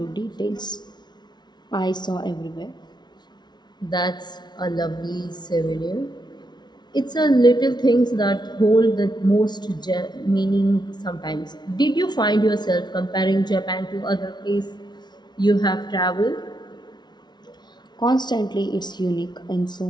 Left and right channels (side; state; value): right; late; 0.20 ms